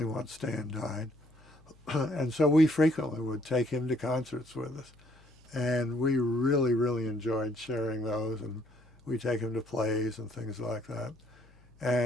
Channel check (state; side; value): noise; left; hum, 28 dB below the sound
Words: once Stan died. And so we frequently would take him to concerts with us. And we really, really enjoyed sharing those, and we'd take him to plays and things like that.